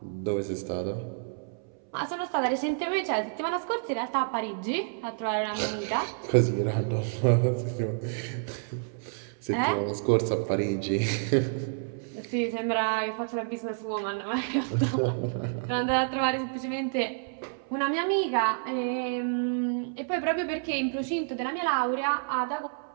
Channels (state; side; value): silent; left; 58 dB below the other